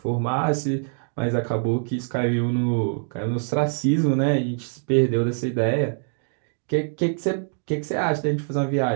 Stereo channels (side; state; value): left; silent; digital silence